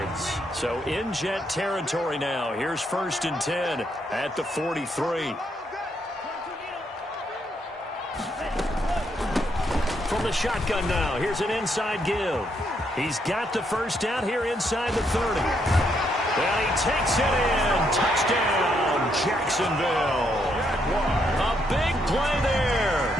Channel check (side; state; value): both; normal; correlation 0.75